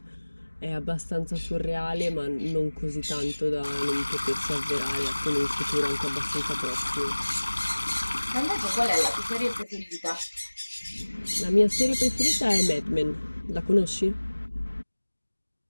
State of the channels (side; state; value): both; inverted; correlation -1.00